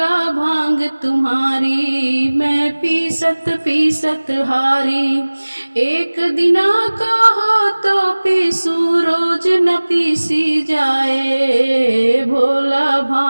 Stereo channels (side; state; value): both; inverted; correlation -1.00